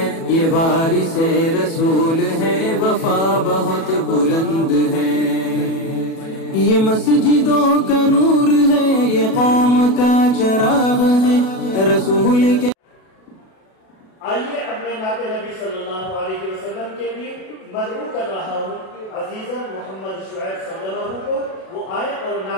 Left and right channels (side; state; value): right; late; 37 ms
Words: ये वारिसे रसूल है, वफा बहुत बुलंद है। ये मस्जिदों का नूर है, ये कौम का चराग है, रसूल के। आइए अपने नाते नबी सल्लल्लाहु अलैहि वसल्लम के लिए मदऊ कर रहा हूँ अजीज़न मोहम्मद शुएब सल्लल्लाहु को, वो आए और